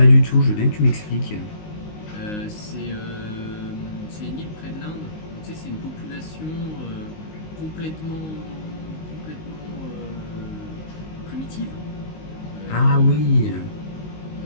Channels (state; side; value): late; right; 19 ms